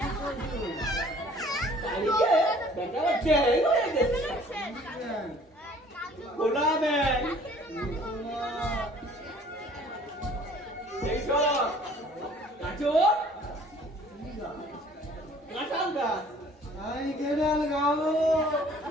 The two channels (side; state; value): both; normal; correlation 0.54